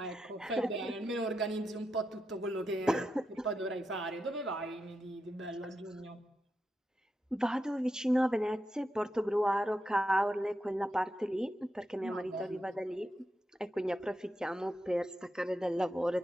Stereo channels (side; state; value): both; normal; correlation 0.87